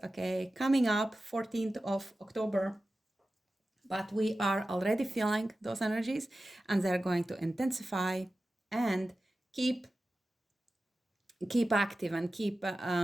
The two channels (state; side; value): normal; both; correlation 0.94